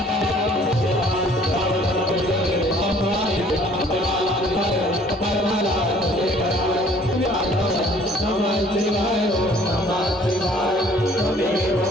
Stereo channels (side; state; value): both; normal; correlation 0.57